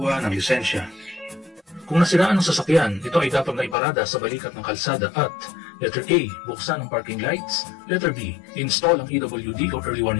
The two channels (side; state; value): right; drops out; at 3.8 s